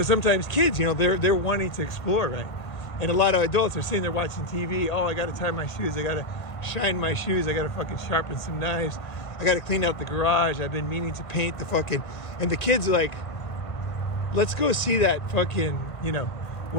sometimes kids, you know, they're wanting to explore, right? And a lot of adults are sitting there watching TV. Oh, I got to tie my shoes. I got to shine my shoes. I got to fucking sharpen some knives. I got to clean out the garage. I've been meaning to paint the fucking... And the kid's like, let's go see that fucking, you know,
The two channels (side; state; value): right; late; 1.5 ms